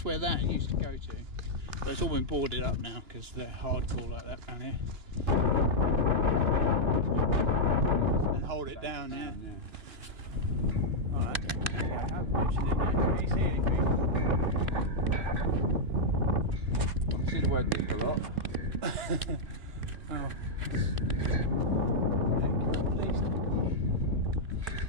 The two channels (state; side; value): late; left; 2.9 ms